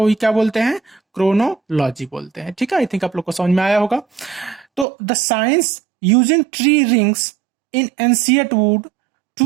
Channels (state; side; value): drops out; left; at 4.9 s